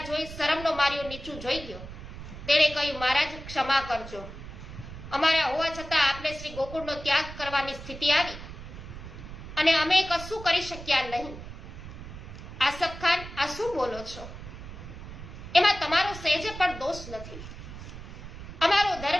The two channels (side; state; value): right; noise; rumble, 12 dB below the sound